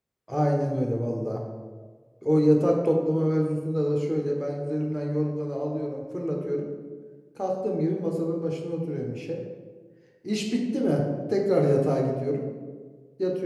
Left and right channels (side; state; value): both; identical; correlation 1.00